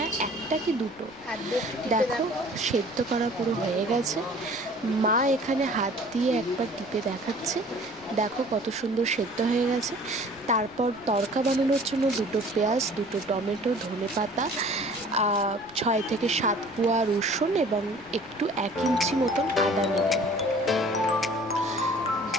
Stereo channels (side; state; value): left; noise; rumble, 26 dB below the sound